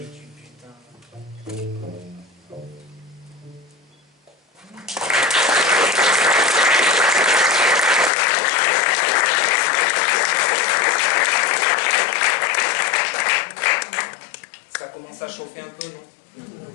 du butin. commence à chauffer un peu, non?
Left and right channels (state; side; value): drops out; right; at 8.1 s